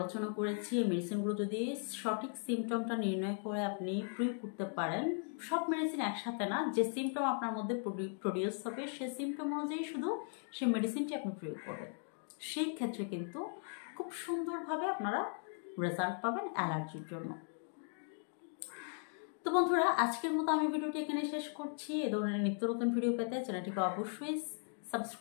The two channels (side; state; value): right; silent; 53 dB below the other